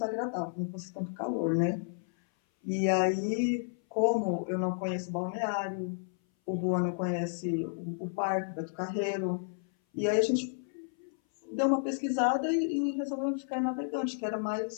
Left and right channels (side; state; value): right; silent; 57 dB below the other